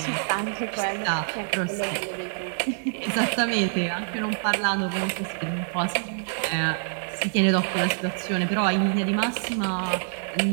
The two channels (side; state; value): left; silent; digital silence